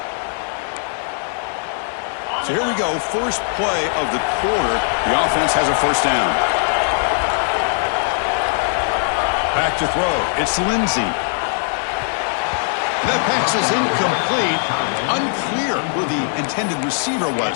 So here we go. First play of the quarter. The offense has a first down. Back to throw. It's Lindsey. That pass is incomplete. Unclear who the intended receiver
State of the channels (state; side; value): silent; right; 57 dB below the other